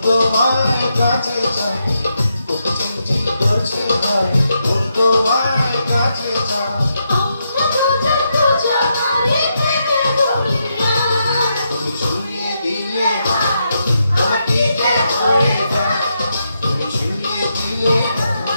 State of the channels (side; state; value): both; inverted; correlation -0.82